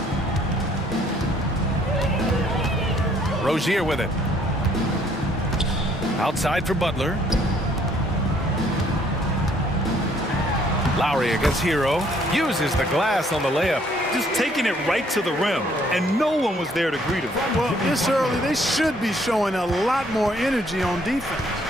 Rozier with it. Outside for Butler. Lowry against Hero. Uses the glass on the layup. Just taking it right to the rim, and no one was there to greet him. Well, this early, they should be showing a lot more energy on defense.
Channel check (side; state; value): both; normal; correlation 0.64